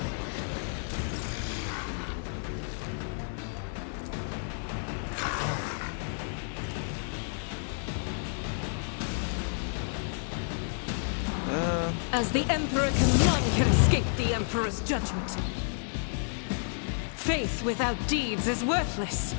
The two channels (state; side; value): silent; right; 57 dB below the other